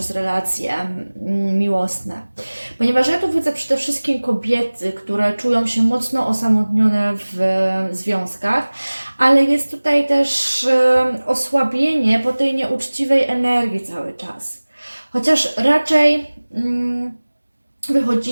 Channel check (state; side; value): inverted; both; correlation -1.00